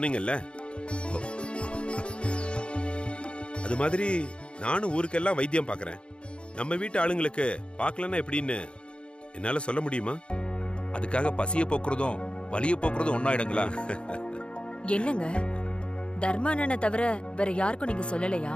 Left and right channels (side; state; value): right; late; 0.056 ms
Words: அது மாதிரி நானும் ஊருக்கெல்லாம் வைத்தியம் பாக்குறேன். நம்ம வீட்டு ஆளுங்களுக்கு பார்க்கலன்னா எப்படின்னு என்னால சொல்ல முடியுமா? அதுக்காக பசிய போக்குறதும் வலிய போக்குறதும் ஒன்னாயிடுங்களா? என்னங்க, தர்மானனை தவிர வேற யாருக்கும் நீங்க சொல்லலையா?